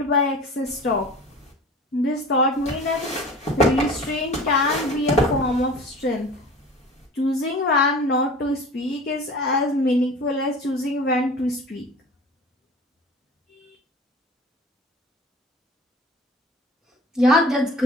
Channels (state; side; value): normal; both; correlation 0.41